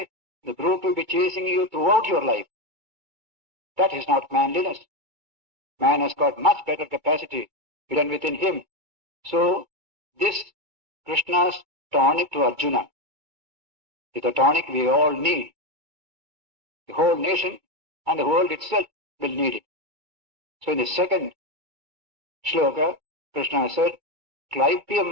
the brute will be chasing you throughout your life. That is not manliness. Man has got much better capacity hidden within him. So, this Krishna's tonic to Arjuna is the tonic we all need. The whole nation and the world itself will need it. So in the second shloka, Krishna said,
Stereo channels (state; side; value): late; left; 2.3 ms